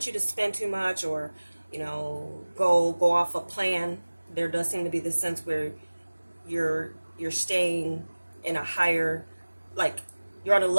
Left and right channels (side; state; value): both; inverted; correlation -1.00